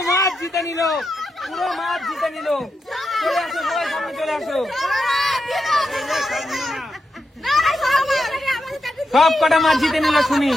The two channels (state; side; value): normal; both; correlation 0.86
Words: মাছ জিতে নিল, পুরো মাছ জিতে নিল। চলে আসো সবাই, সামনে চলে আসো। সব কটা মাছ জিতে নিল সুমি।